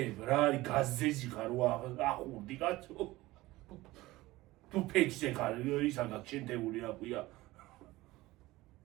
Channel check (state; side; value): quieter; left; 18.7 dB